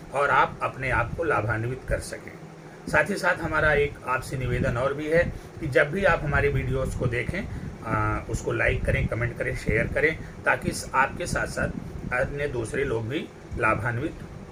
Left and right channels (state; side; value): identical; both; correlation 1.00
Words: और आप अपने आप को लाभान्वित कर सकें। साथ ही साथ हमारा एक आपसे निवेदन और भी है कि जब भी आप हमारे वीडियोस को देखें उसको लाइक करें, कमेंट करें, शेयर करें ताकि आपके साथ साथ अन्य दूसरे लोग भी लाभान्वित